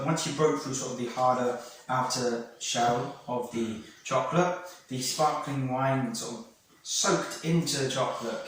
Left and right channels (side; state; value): both; identical; correlation 1.00